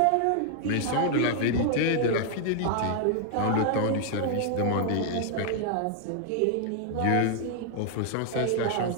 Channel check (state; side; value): different; both; correlation 0.00